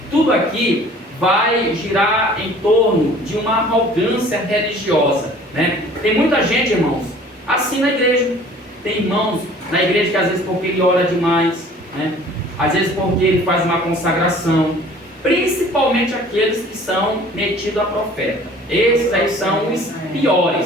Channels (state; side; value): normal; both; correlation 0.50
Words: tudo aqui vai girar em torno de uma arrogância religiosa, né? Tem muita gente, irmãos, assim na igreja. Tem irmãos na igreja que às vezes porque ele ora demais, né? Às vezes porque ele faz uma consagração, principalmente aqueles que são metidos a profeta. Esses aí são os